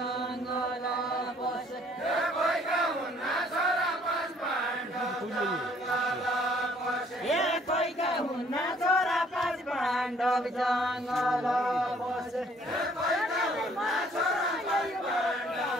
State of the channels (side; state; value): both; normal; correlation 0.60